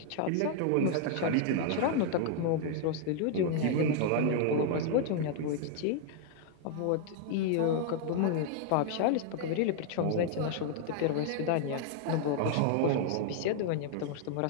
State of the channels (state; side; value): different; both; correlation 0.00